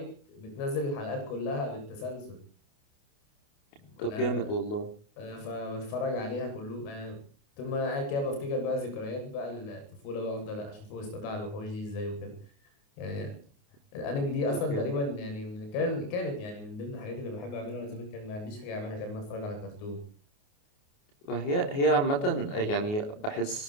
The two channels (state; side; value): late; right; 29 ms